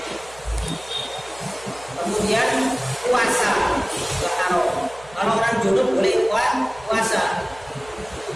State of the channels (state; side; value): noise; right; hum, 22 dB below the sound